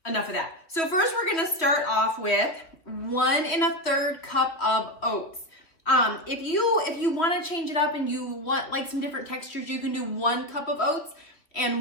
enough of that. So first we're gonna start off with 1 1/3 cup of oats. If you wanna change it up and you want like some different textures, you can do 1 cup of oats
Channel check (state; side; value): late; right; 3.1 ms